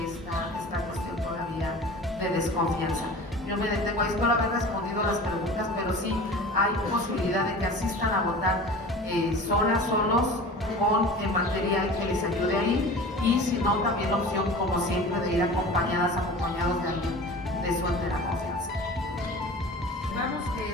esta cuestión todavía de desconfianza. Yo me detengo ahí, espero haber respondido a las preguntas, pero sí hay posibilidad de que asistan a votar solos, con material que les ayude ahí, y si no, también la opción, como siempre, de ir acompañados de alguien de su entera confianza. Vamos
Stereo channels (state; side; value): normal; both; correlation 0.38